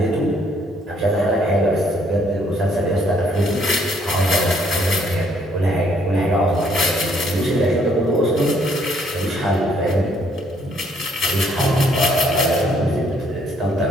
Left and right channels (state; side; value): normal; both; correlation 0.67